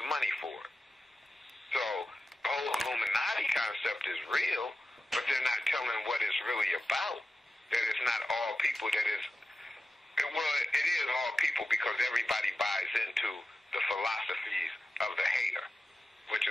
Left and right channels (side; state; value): both; normal; correlation 0.93